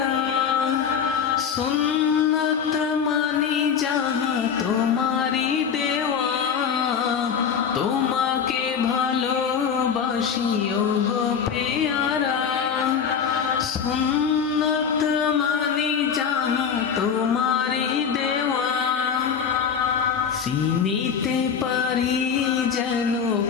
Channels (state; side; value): quieter; right; 7.1 dB